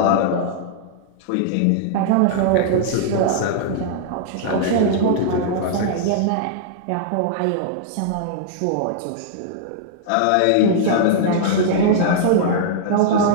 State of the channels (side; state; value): both; different; correlation -0.01